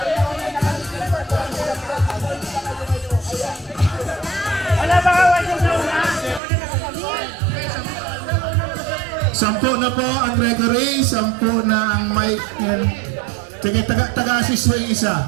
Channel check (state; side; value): drops out; left; at 6.4 s